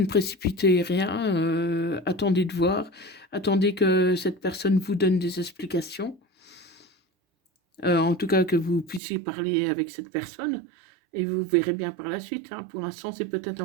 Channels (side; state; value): left; drops out; at 9.0 s